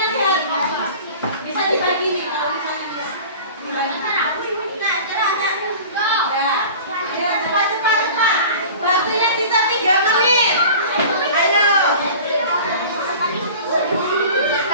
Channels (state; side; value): inverted; both; correlation -0.40